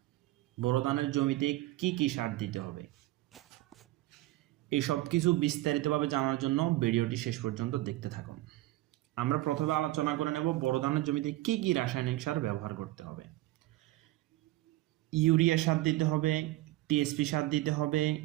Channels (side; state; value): left; quieter; 17.4 dB